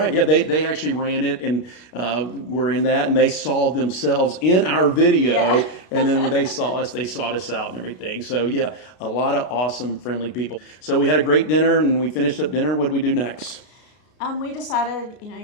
Yeah, they actually ran it and were in that, and they saw themselves in our video. Yeah. And then when they saw us, they sought us out and everything. So yeah, a lot of awesome, friendly people. So we had a great dinner, and we finished up dinner. What did we do next? We decided,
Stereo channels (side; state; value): right; late; 33 ms